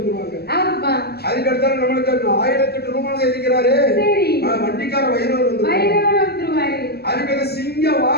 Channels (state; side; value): late; right; 0.46 ms